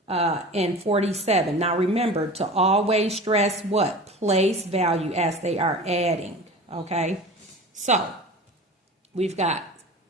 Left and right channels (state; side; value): normal; both; correlation 0.36